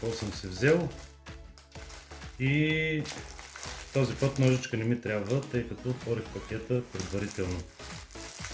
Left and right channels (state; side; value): identical; both; correlation 1.00